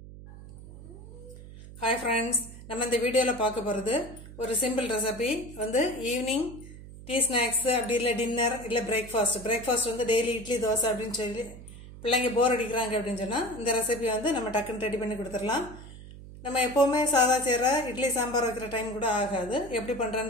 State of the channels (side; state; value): right; noise; hum, 15 dB below the sound